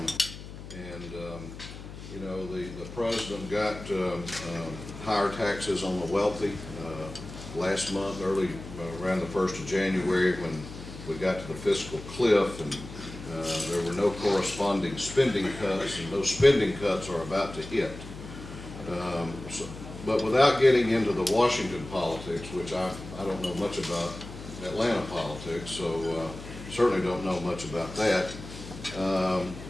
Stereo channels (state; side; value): noise; left; hum, 13 dB below the sound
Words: The president got higher taxes on the wealthy last month, around the 1st of January, when we got to the fiscal cliff, and there were no corresponding spending cuts, and those spending cuts are about to hit. But without getting into the Washington politics, which I don't know much about Atlanta politics, so certainly don't know much about that.